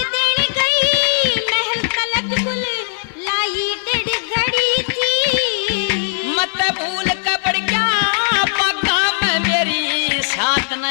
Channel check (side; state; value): right; silent; 67 dB below the other